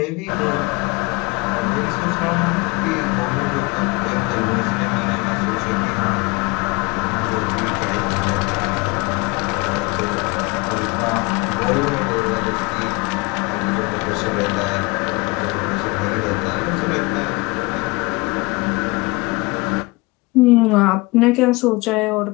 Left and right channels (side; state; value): right; quieter; 25.1 dB